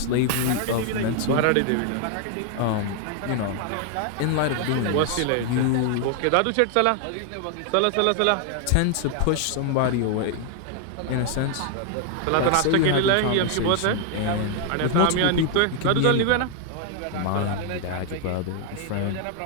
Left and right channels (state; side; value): different; both; correlation 0.00